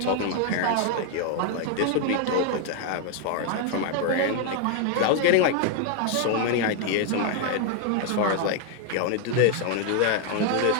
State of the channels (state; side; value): different; both; correlation 0.00